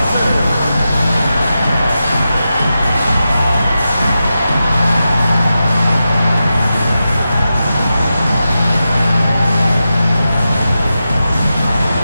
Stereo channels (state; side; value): inverted; both; correlation -0.90